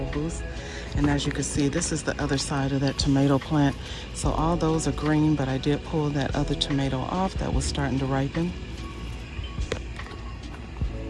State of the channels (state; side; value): identical; both; correlation 1.00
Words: boost. And as you can see, this is the other side of that tomato plant. So all those are green, but I did pull that other tomato off that was starting to ripen.